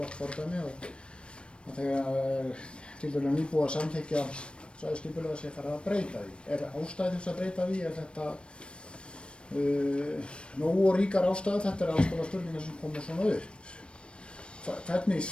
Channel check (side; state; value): right; late; 0.057 ms